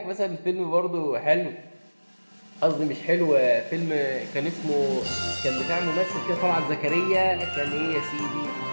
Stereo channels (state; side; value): inverted; both; correlation -1.00